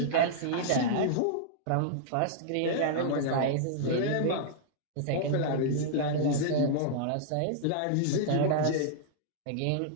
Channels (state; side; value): different; both; correlation -0.01